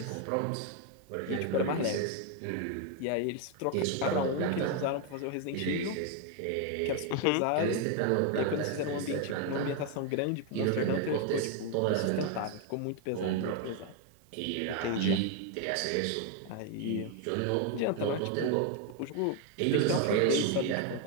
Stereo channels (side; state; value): both; different; correlation 0.01